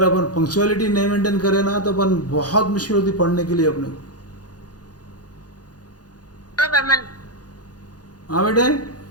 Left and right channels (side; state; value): right; late; 0.69 ms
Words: अपन पंक्चुअलिटी नहीं मेंटेन करें ना तो अपन बहुत मुश्किल होती पढ़ने के लिए अपने को. हाँ बेटे,